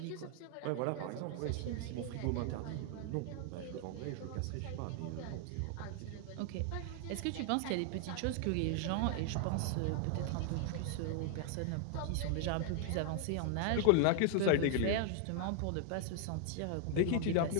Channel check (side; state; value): both; different; correlation 0.00